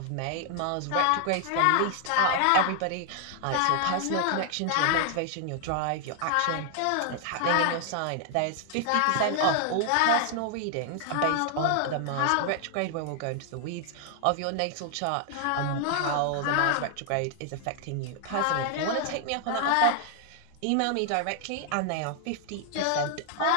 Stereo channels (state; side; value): different; both; correlation 0.00